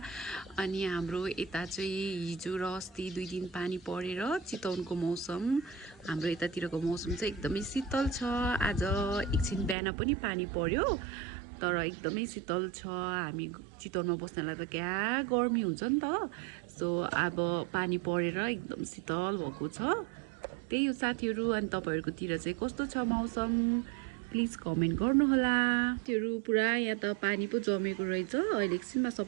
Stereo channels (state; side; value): drops out; left; at 9.8 s